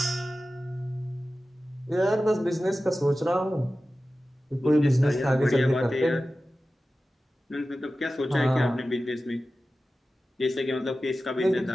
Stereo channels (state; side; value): normal; both; correlation 0.95